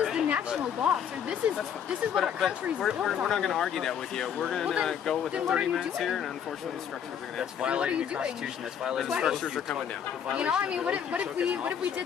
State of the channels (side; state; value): right; quieter; 8.4 dB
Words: is the national law, sir. This is what our country's we're built on. not going to argue that with you. We're going to Well, then- go with then the what are 30 you minutes doing? here, and unfortunately, the structures are going to have to What are Violating you the doing? Constitution. That's The violating Why? structures are coming down. You know, I mean, what if we